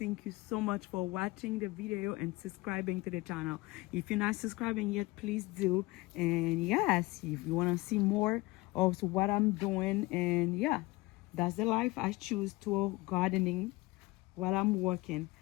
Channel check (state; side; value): quieter; right; 21.1 dB